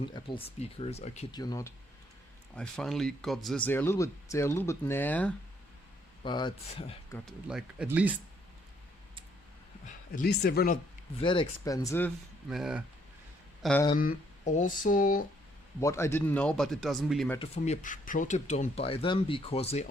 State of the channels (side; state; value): both; normal; correlation 0.68